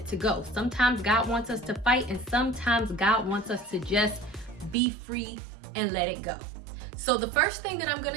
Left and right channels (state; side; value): drops out; left; at 4.8 s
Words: to go. Sometimes God wants us to fight, and sometimes God wants us to just be free and let it go. So the first thing that I'm